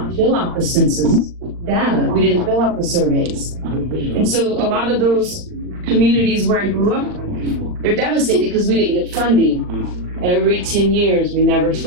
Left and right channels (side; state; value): left; late; 39 ms